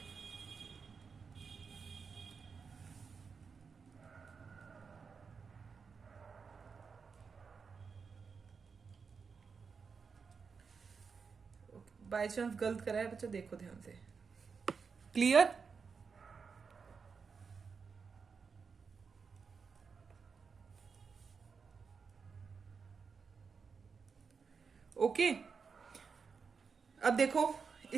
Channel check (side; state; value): left; quieter; 5.5 dB